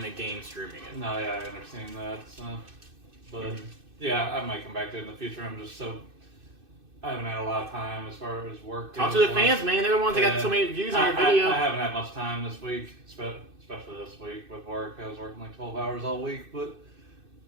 the game streaming it. No, yeah, I understand that. So, but yeah, I might come back to it in the future. I haven't had a lot of time as far as work. Talk to goes. the fans, man. They're the ones that got so many views on your video. I haven't had much time this week, especially this week with work. I was working like 12 hours all week, but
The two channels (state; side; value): late; left; 2.6 ms